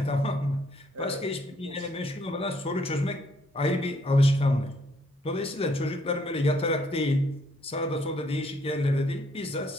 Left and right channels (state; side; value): normal; both; correlation 0.68